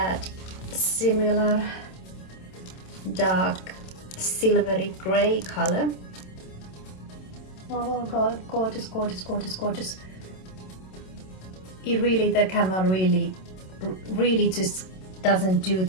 similar dark silvery gray color. Oh god, gorgeous, gorgeous, gorgeous, gorgeous. It really, the camera really just doesn't do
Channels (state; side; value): late; right; 27 ms